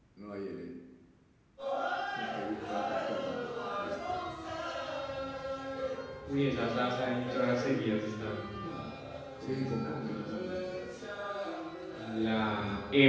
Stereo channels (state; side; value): identical; both; correlation 1.00